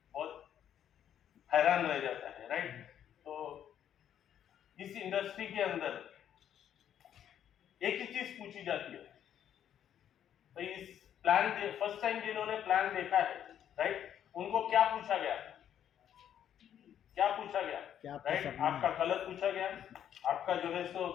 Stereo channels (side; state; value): right; quieter; 9.9 dB